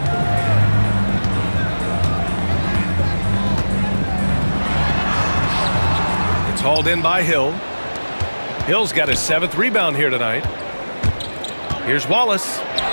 It's hauled in by Hill. Hill's got his 7th rebound here tonight. Here's Wallace.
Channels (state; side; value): inverted; both; correlation -1.00